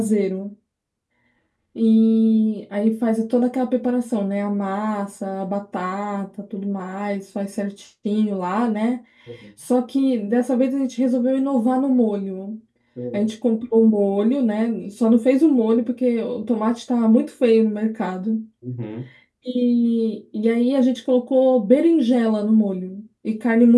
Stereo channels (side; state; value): both; identical; correlation 1.00